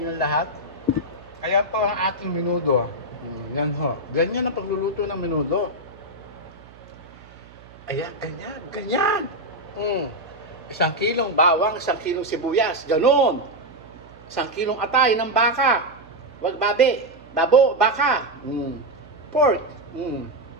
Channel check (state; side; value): noise; right; hum, 23 dB below the sound